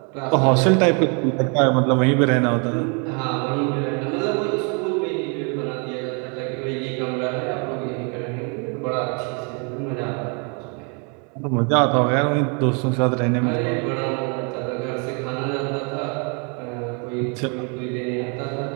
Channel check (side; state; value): left; quieter; 36.1 dB